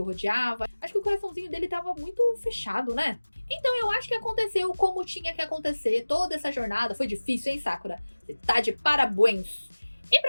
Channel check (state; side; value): inverted; both; correlation -1.00